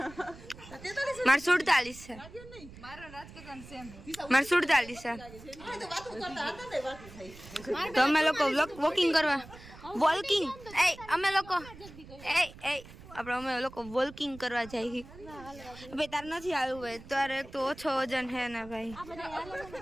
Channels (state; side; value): noise; right; rumble, 17 dB below the sound